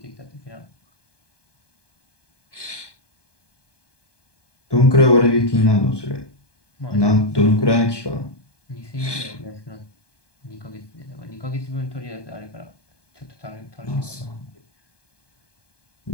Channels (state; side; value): late; right; 1.2 ms